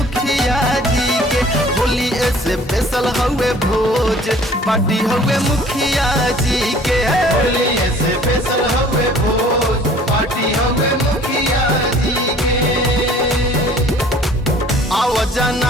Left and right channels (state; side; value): normal; both; correlation 0.52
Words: जी के, होली ऐसे बेसल हुए भोज। पार्टी हुए मुखिया जी के, होली ऐसे बेसल हुए भोज। पार्टी हुए मुखिया जी के। आव